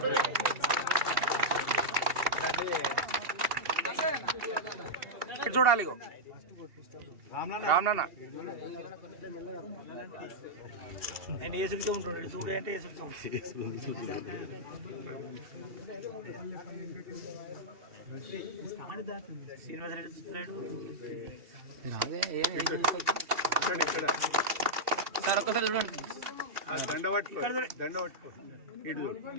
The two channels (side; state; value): left; late; 2.7 ms